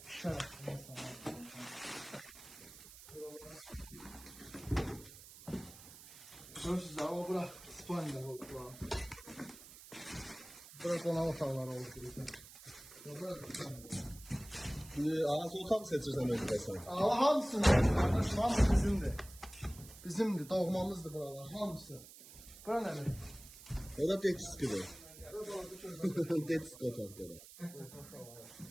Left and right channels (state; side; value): noise; right; hiss, 17 dB below the sound